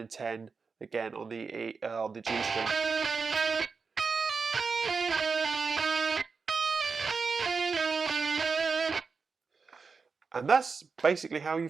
10 again on the G string. And that's basically how you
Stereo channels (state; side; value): quieter; left; 4.9 dB